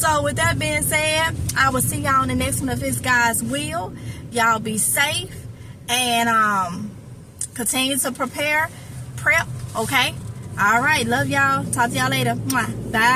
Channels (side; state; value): both; identical; correlation 1.00